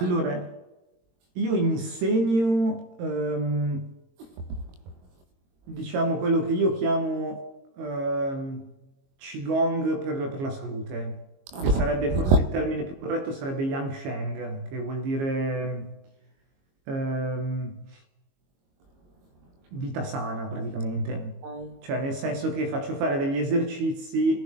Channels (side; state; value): left; late; 22 ms